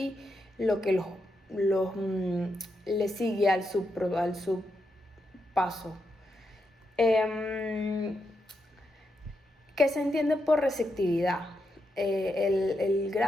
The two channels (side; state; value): both; normal; correlation 0.84